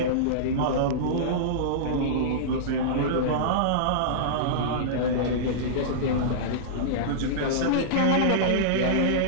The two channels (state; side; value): different; both; correlation -0.03